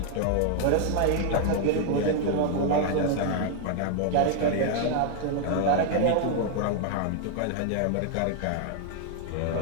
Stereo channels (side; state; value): both; different; correlation 0.00